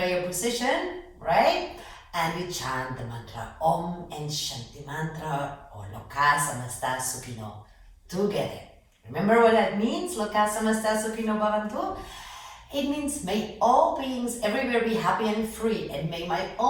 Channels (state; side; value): identical; both; correlation 1.00